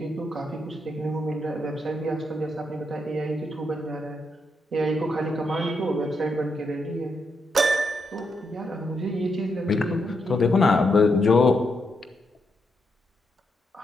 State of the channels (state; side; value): normal; both; correlation 0.81